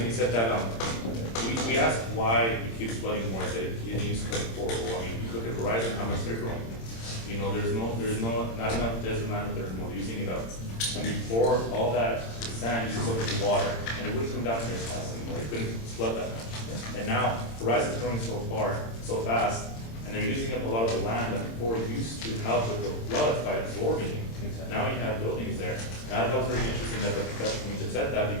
he said that, we asked why it keeps flooding more, that it needs to come forward. Well, I mean, you look at Verizon, how much they're growing. You know, there's not enough desert land there anymore, they're using it up. And before all that sand used up the water, and it wouldn't come down here as fast anymore, it couldn't flood that much. And now Verizon's growing so fast, and they're using up a lot of the land that before used to help with the floods by absorbing it. Exactly. Now you have buildings there. And I thought it was very interesting that the professor from UTEP said that,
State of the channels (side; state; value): right; late; 26 ms